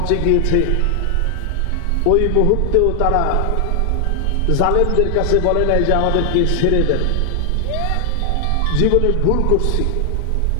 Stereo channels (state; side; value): different; both; correlation 0.00